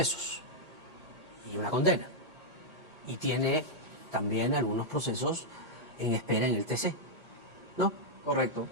y una condena. Y tiene también algunos procesos en espera en el TC, ¿no? Correcto,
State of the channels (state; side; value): normal; both; correlation -0.05